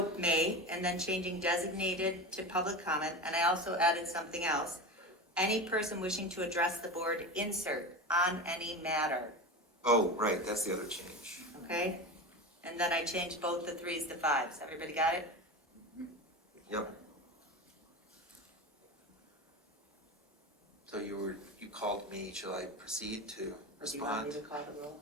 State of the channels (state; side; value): normal; both; correlation 0.26